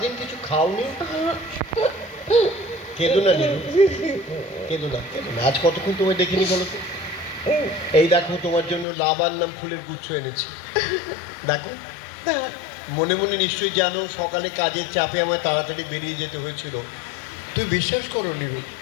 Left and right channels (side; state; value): right; drops out; at 8.8 s